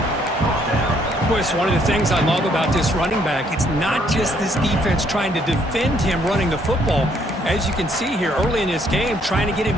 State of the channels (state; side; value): normal; both; correlation 0.68